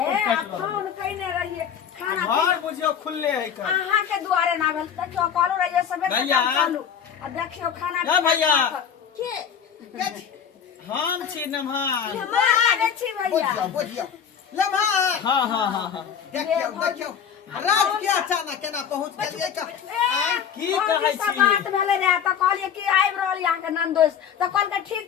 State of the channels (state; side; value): quieter; right; 8.1 dB